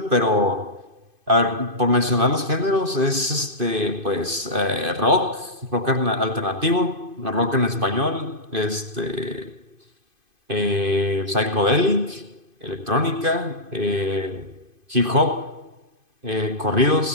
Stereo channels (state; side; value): late; left; 2.5 ms